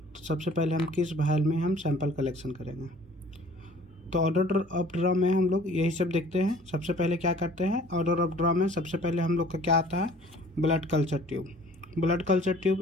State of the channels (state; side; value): normal; both; correlation 0.51